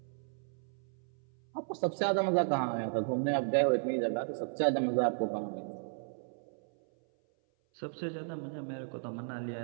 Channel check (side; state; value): left; silent; 55 dB below the other